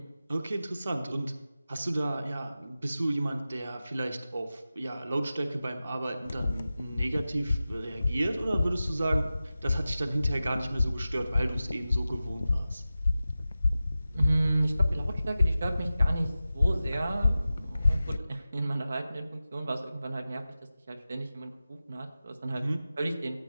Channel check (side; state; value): both; inverted; correlation -0.94